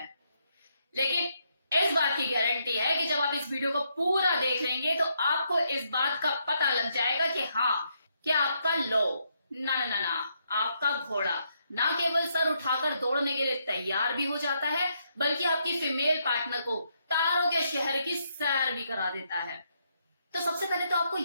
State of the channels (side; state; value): both; inverted; correlation -0.76